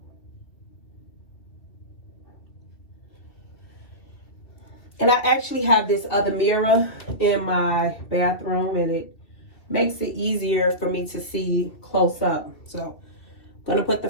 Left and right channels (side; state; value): right; late; 2.7 ms